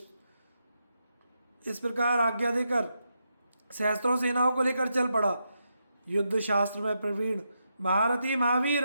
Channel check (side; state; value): both; inverted; correlation -0.83